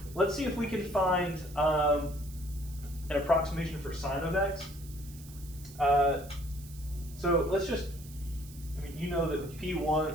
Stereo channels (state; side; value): noise; right; hiss, 19 dB below the sound